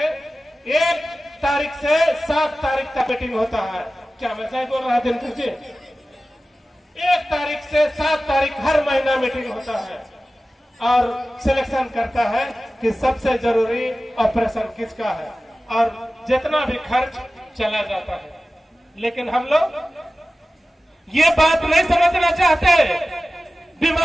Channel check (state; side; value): normal; both; correlation 0.95